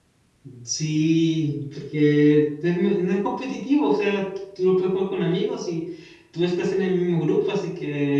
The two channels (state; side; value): identical; both; correlation 1.00